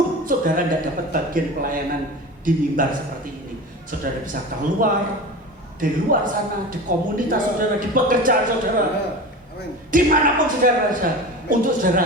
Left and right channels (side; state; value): both; normal; correlation 0.32